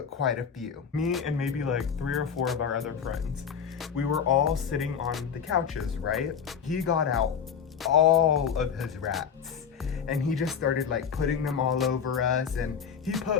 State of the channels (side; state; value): right; quieter; 7.2 dB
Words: quite a few. Me and maybe like 3 or 4 of our other friends. We were all sitting on the couches, right? He got out all of his rats and he just started like putting them all over us, and he